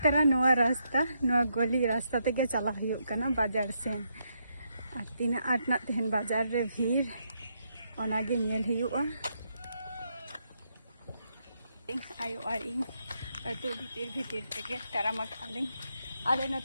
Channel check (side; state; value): both; inverted; correlation -0.79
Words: तारा नवा रास्ता नवा गली रास्ता ते चला बाजार सेन और तीना आटना तेहन बाजार रे भीड़ ओनागे नेल हुआ आयो और इन अतु भीतर तेगे ताराम आले